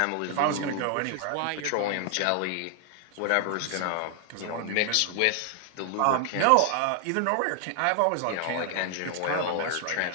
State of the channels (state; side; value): different; both; correlation 0.00